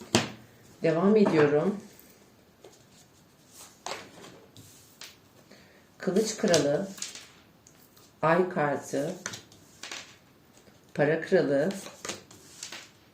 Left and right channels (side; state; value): both; identical; correlation 1.00